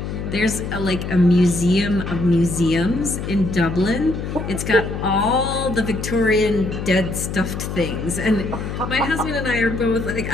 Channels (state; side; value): noise; left; hum, 5 dB below the sound